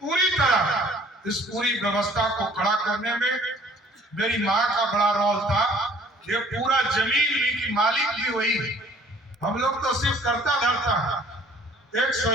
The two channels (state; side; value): normal; both; correlation 0.56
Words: पूरी तरह इस पूरी व्यवस्था को खड़ा करने में मेरी माँ का बड़ा रोल था। ये पूरा जमीन भी की मालिक भी वही, हम लोग तो सिर्फ करता धरता, एक